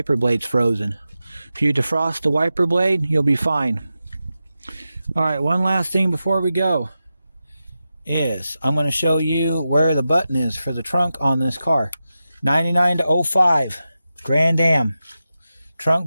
blade's frozen. If you defrost the wiper blade, you'll be fine. Alright, one last thing before we go is I'm going to show you where the button is for the trunk on this car. 99 to 05 Grand Am.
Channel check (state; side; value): inverted; both; correlation -0.91